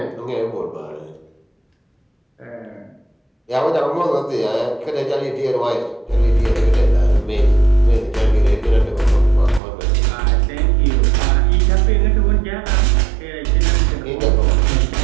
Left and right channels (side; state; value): left; drops out; at 9.6 s